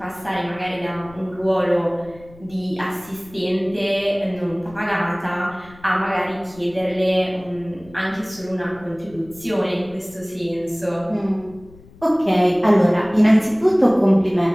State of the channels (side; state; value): left; noise; rumble, 23 dB below the sound